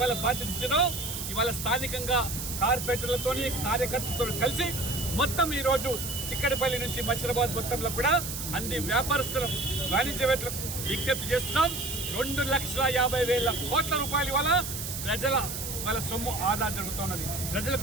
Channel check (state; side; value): noise; right; hiss, 6 dB below the sound